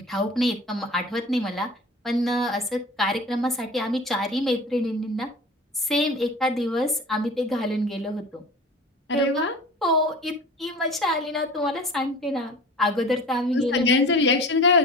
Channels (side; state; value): both; normal; correlation 0.39